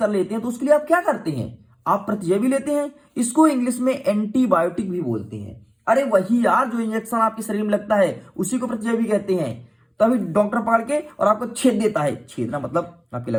लेते हैं तो उसके लिए आप क्या करते हैं, आप प्रतिजैवी लेते हैं। इसको इंग्लिश में एंटीबायोटिक भी बोलते हैं। अरे वही यार, जो इंजेक्शन आपके शरीर में लगता है उसी को प्रतिजैवी कहते हैं। तो अभी डॉक्टर पकड़ के और आपको छेद देता है, छेदना मतलब आपके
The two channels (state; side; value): identical; both; correlation 1.00